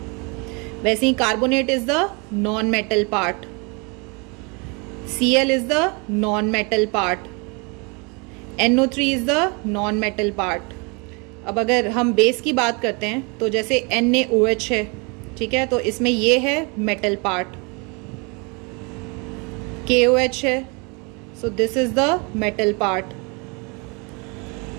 वैसे ही carbonate is the non metal part, Cl is the non metal part, NO3 is the non metal part. अब अगर हम बेस की बात करते हैं तो जैसे NaOH है, ठीक है, तो इसमें ये है मेटल पार्ट। KOH है, so this is the metal part,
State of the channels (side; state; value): left; quieter; 31.3 dB